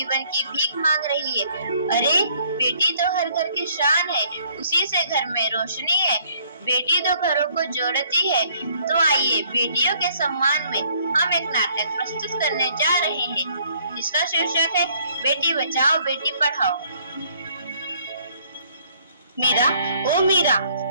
की भीख मांग रही है। अरे बेटी तो हर घर की शान है, उसी से घर में रोशनी है। बेटी तो घरों को जोड़ती है। तो आइए बेटियों के सम्मान में हम एक नाटक प्रस्तुत करने जा रहे हैं, जिसका शीर्षक है बेटी बचाओ बेटी पढ़ाओ। मीरा, ओ मीरा,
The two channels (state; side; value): inverted; both; correlation -0.63